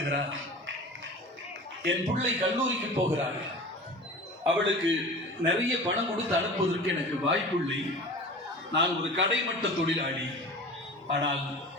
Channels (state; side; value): normal; both; correlation 0.37